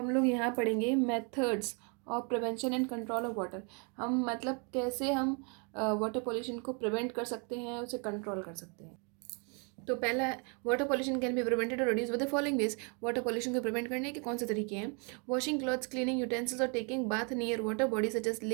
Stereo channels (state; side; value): quieter; left; 36.0 dB